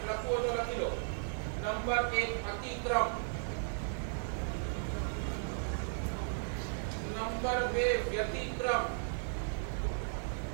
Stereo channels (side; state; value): left; silent; digital silence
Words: લખવું તો લખી લો. નંબર 1 અતિક્રમ, નંબર 2 વ્યતિક્રમ,